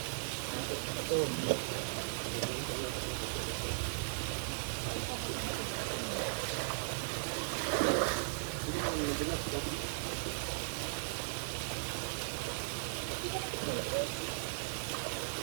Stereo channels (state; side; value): silent; left; digital silence